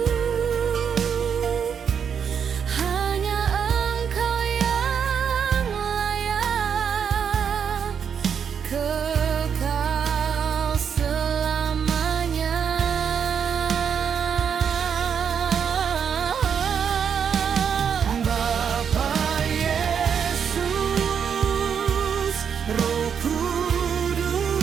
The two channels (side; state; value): left; quieter; 7.4 dB